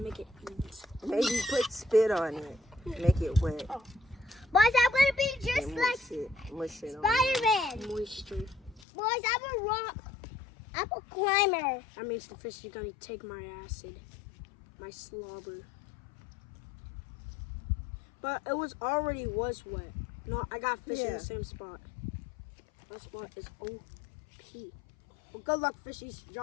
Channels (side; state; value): right; drops out; at 8.8 s